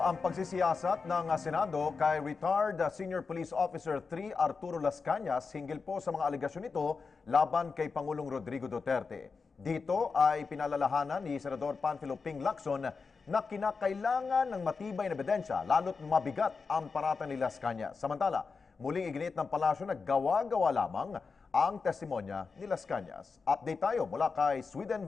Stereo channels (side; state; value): right; quieter; 4.8 dB